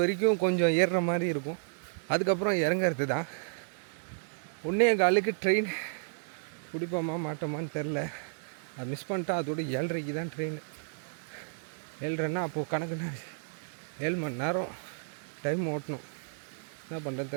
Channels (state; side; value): silent; left; digital silence